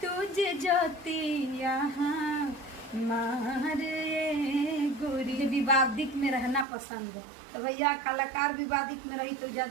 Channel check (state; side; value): drops out; left; at 6.7 s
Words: तुझे जतिया मारे गोरी। विवादित में रहना पसंद है तो भैया कलाकार विवादित में रही तो